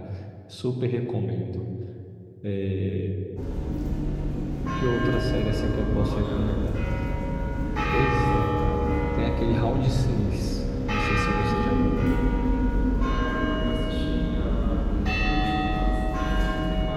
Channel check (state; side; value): identical; both; correlation 1.00